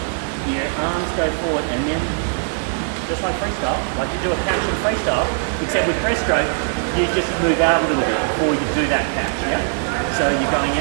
your arms go forward, and then just like freestyle, like you do a catch in freestyle, except with breaststroke, you just move out a little bit before you do that catch, yeah? So you're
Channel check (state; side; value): silent; left; digital silence